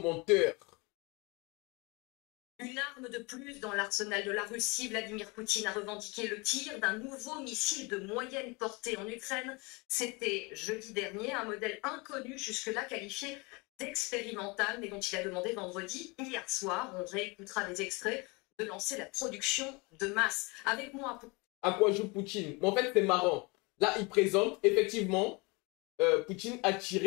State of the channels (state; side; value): quieter; right; 27.4 dB